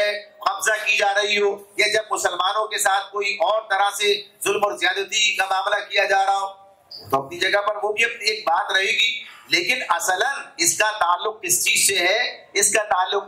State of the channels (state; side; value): identical; both; correlation 1.00